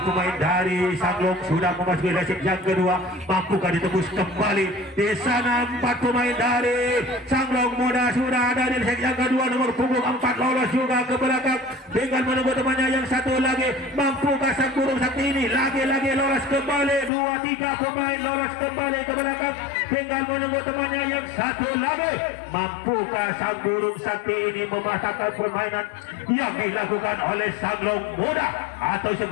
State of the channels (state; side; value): drops out; right; at 17.1 s